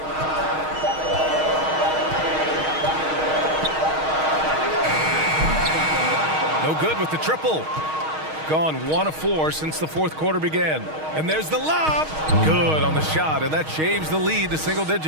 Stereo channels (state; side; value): late; left; 6.4 ms